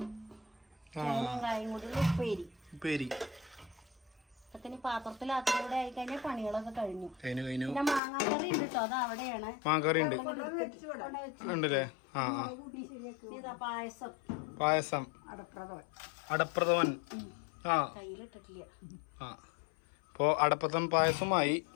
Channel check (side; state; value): right; drops out; at 8.0 s